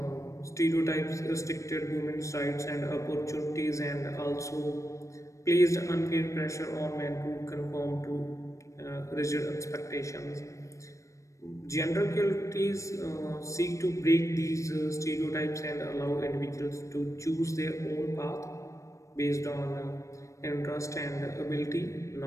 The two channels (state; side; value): late; right; 0.15 ms